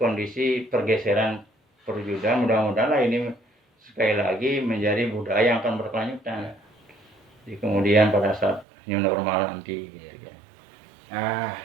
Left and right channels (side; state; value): left; drops out; at 8.7 s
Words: pergeseran perwujudan. Mudah-mudahan ini sekali lagi menjadi budaya yang akan berkelanjutan di kemudian pada saat new normal nanti gitu ya.